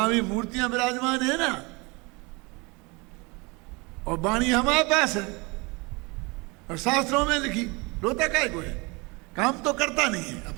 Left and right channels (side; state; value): left; quieter; 27.2 dB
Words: भी मूर्तियां विराजमान है ना, और वाणी हमारे पास है और शास्त्रों में लिखी। रोता काय को है? काम तो करता नहीं है